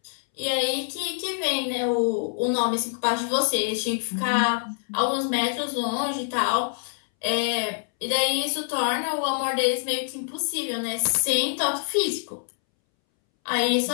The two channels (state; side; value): silent; right; 62 dB below the other